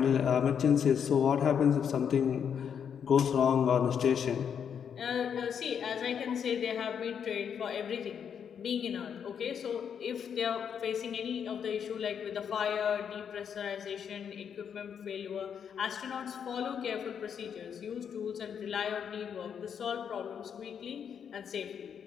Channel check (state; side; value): quieter; right; 7.7 dB